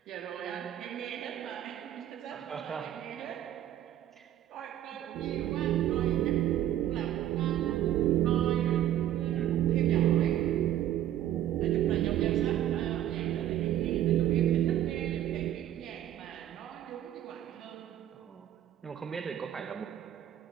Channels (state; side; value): quieter; left; 11.9 dB